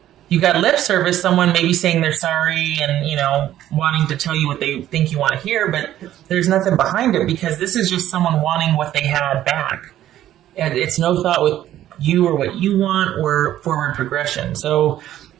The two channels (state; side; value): quieter; left; 12.6 dB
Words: You got lip service, someone maybe saying they're sorry and, wanting to tell you what they think you want to hear, but there's nothing behind it, because this is just someone wanting what they had back. And it's no thought with you or what you want or forward progression. So